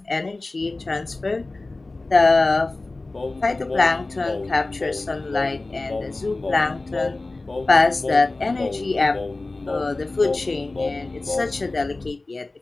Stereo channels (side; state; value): right; quieter; 3.2 dB